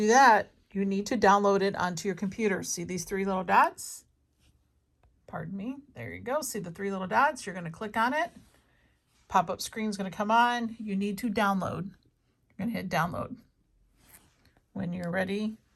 that, you need to download it onto your computer. See these three little dots? Pardon me. There you go. See the three little dots? You're going to click on it. Pop-up screen is going to come on. You need to download. You're going to hit download. When you're ready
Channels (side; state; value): both; identical; correlation 1.00